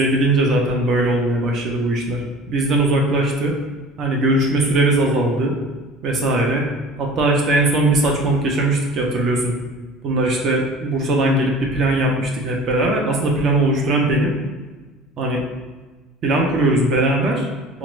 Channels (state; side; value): normal; both; correlation 0.42